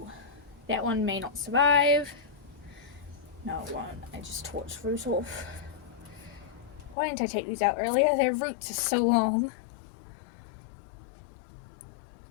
that one may not survive. No, it won't. I just tore its root off. Why didn't I take these out earlier? Their roots are so long.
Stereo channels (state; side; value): drops out; right; at 7.0 s